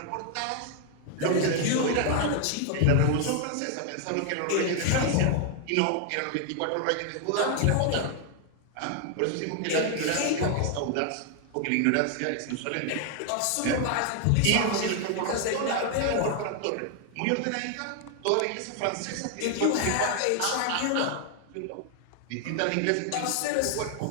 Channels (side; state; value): both; different; correlation 0.00